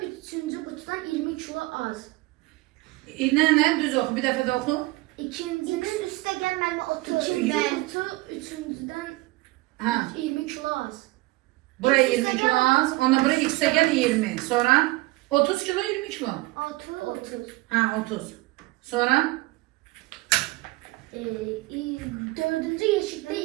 üçüncü kutudan 20 kilo az. Ne? Düz oku. Bir dəfə də oku. İkincinin üstte gelmeli 30. İkinci kutu üçüncüden Ha. 20 kilo az. Buraya 20 kilo az. Ona buraya x'e gel 20. Sonra 30 kilo 20 kilo. 30. Ha 30. Sonra? Dördüncü yeşikte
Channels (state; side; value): quieter; left; 21.3 dB